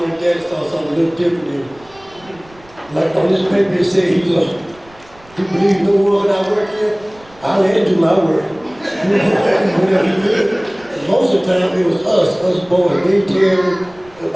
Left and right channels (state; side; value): noise; right; rumble, 26 dB below the sound